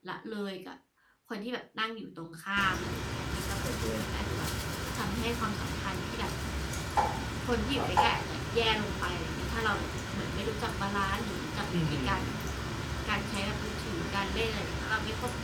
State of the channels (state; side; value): identical; both; correlation 1.00